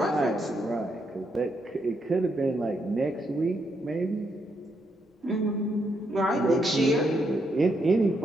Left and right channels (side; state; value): both; normal; correlation 0.78